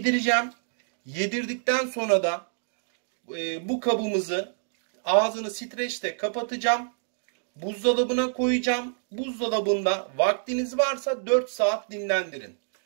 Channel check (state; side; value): silent; left; digital silence